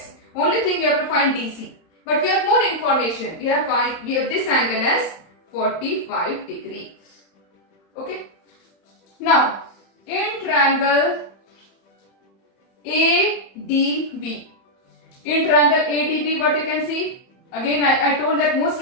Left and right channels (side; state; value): right; late; 31 ms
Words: Only thing we have to find DC. But we have more information. We have this angle as 45 degree. Okay. Now, in triangle ADB. In triangle ADB, what you can see? Again, I told that